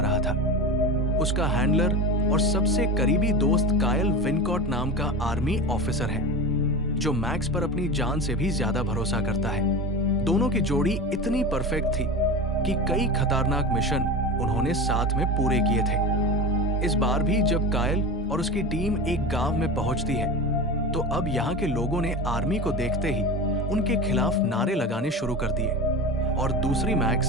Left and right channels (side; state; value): both; normal; correlation 0.28